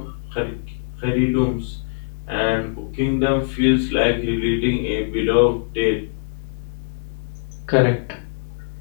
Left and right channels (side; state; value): right; silent; 64 dB below the other